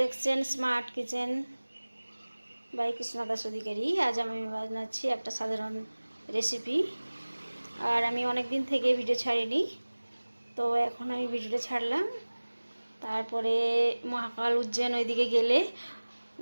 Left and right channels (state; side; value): inverted; both; correlation -1.00